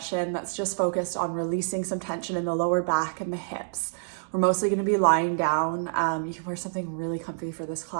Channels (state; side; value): silent; left; digital silence